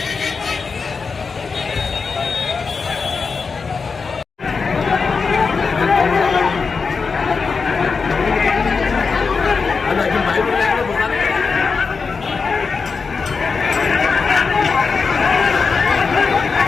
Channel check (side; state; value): right; quieter; 5.0 dB